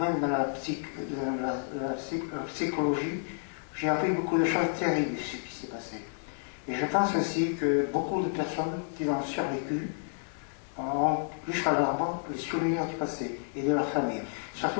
dans la psychologie, j'ai appris beaucoup de choses terribles de ce qui s'est passé. Et je pense aussi que beaucoup de personnes qui ont survécu ont jusqu'à leur mort les souvenirs du passé et de leur famille.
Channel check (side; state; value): right; silent; digital silence